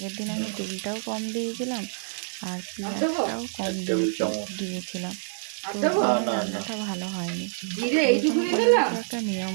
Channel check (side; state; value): left; silent; 60 dB below the other